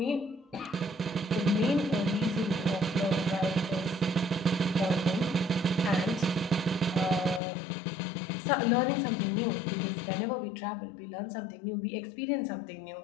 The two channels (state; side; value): drops out; right; at 7.4 s